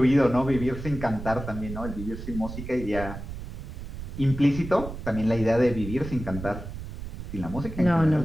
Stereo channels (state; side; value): noise; right; rumble, 9 dB below the sound